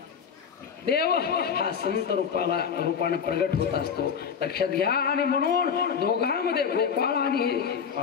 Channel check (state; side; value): quieter; right; 7.0 dB